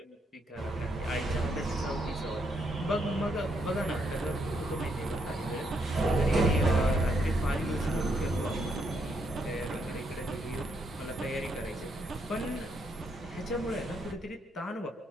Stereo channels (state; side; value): normal; both; correlation 0.76